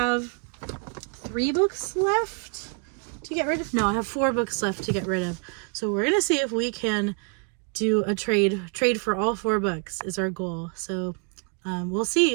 3 books left to get rid of. No, I have 4 books left to get rid of. So we're gonna see if we can do a trade for all 4 books is our goal. So we'll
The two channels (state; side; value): quieter; left; 35.6 dB